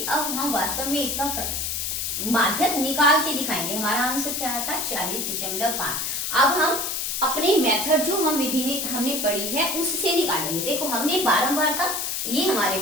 अब हम वास्तव में इसका माध्यक निकाल के दिखाएंगे। हमारा आंसर क्या आता 40.5। अब हम अपने मेथड जो हम विधि ने हमने पढ़ी है उससे निकालेंगे। देखो हमने बारंबारता, ये हमारे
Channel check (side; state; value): left; noise; hiss, 2 dB below the sound